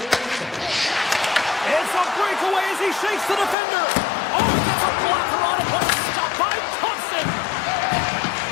a breakaway as he shakes the defender. Oh, gets a blocker on it, but it's stopped by Thompson.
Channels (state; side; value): drops out; right; at 3.6 s